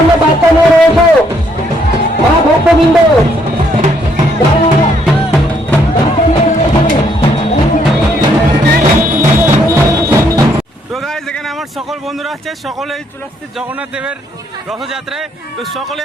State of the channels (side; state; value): both; normal; correlation 0.70